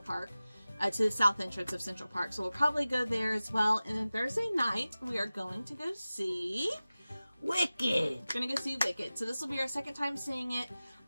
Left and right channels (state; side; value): inverted; both; correlation -0.97